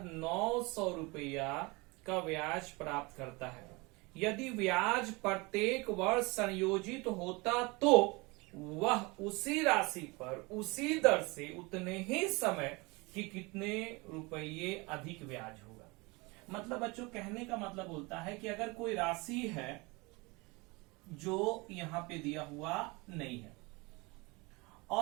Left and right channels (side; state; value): left; quieter; 25.8 dB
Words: 900 रुपया का ब्याज प्राप्त करता है। यदि ब्याज प्रत्येक वर्ष संयोजित होता तो वह उसी राशि पर उसी दर से उतने ही समय कि कितने रुपये अधिक ब्याज होगा। मतलब बच्चों कहने का मतलब बोलता है कि अगर कोई राशि है जो यहां पे दिया हुआ नहीं है